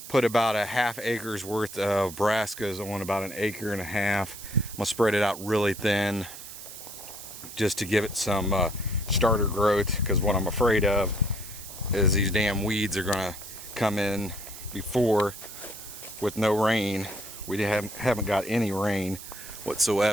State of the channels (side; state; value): right; noise; hiss, 13 dB below the sound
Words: put about a ½ acre's worth of brassicas on about 1.5 acres. I'm going to spread it out really thin just to give it some starter growth, because what I'm afraid of is these damn weeds are going to come in before with no rain. We haven't got any rain